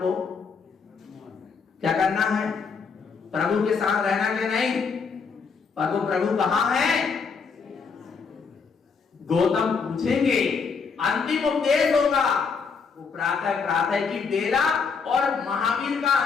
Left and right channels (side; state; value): right; quieter; 5.4 dB